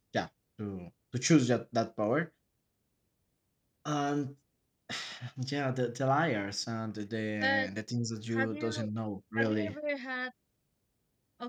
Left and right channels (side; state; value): both; identical; correlation 1.00